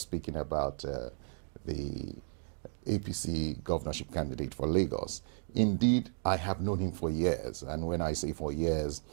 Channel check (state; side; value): silent; left; digital silence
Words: about the APC governorship candidate for Lagos. Indeed, I have known him for years, and when I say for years,